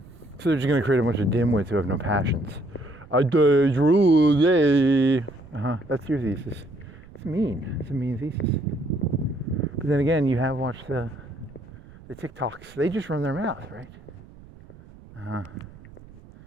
So they're just gonna create a bunch of dimwits who have no passions. That's your thesis. It's mean. It's a mean thesis. But then again, you have watched the TikToks. They just run their mouth, right?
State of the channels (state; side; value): noise; right; rumble, 21 dB below the sound